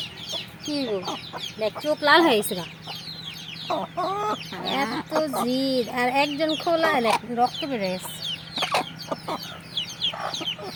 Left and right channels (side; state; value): both; identical; correlation 1.00